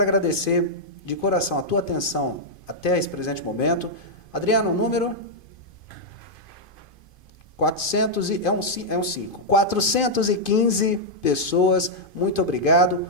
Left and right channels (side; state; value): right; late; 2.5 ms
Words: agradecer de coração a tua atenção até esse presente momento. Adriano, o número? 415 pessoas. Muito obrigado.